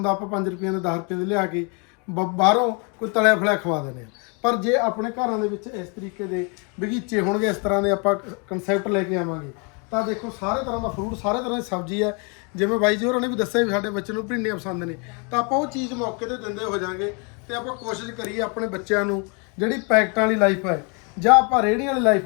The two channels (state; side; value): quieter; right; 34.6 dB